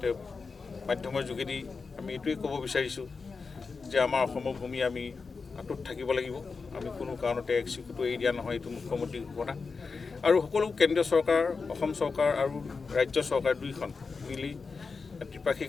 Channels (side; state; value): right; quieter; 4.7 dB